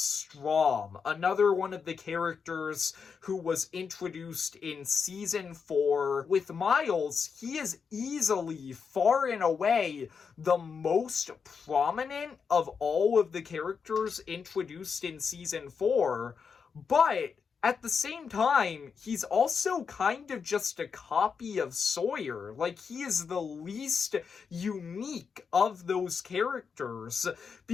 another one of the characters who was introduced in season 4. With Miles, he is easily, far and away, the most prominent of all of the characters introduced in season 4, but at the same time, he's also kind of just a copy of Sawyer. Like, he is the least unique of those characters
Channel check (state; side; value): quieter; right; 5.9 dB